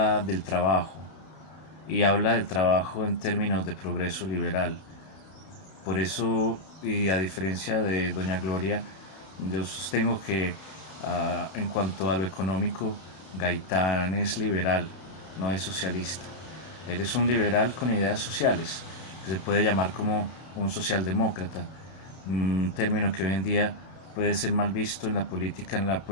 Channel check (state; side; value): late; right; 32 ms